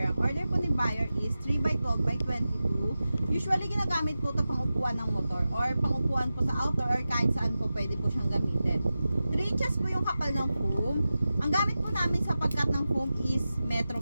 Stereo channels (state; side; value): inverted; both; correlation -0.94